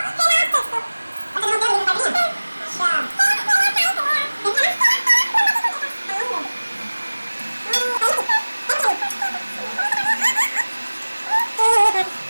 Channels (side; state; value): both; inverted; correlation -1.00